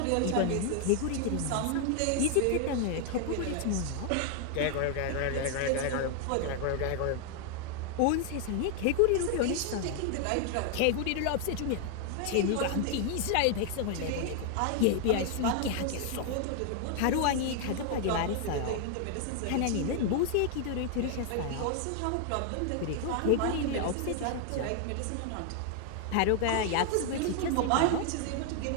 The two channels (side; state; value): both; different; correlation 0.00